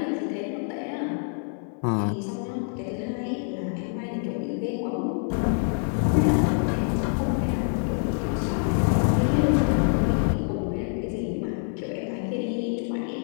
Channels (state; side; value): silent; right; 57 dB below the other